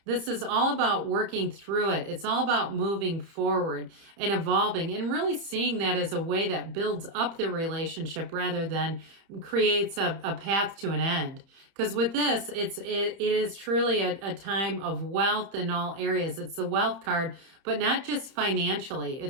This is all about working through it. It's all about moving forward and evolving and really seeing that as a way that builds up the relationship rather than creates a path to an end. Because with this, it is truly a time of wealth in all areas. It's the wealth card, but not just financially.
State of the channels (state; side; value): late; left; 30 ms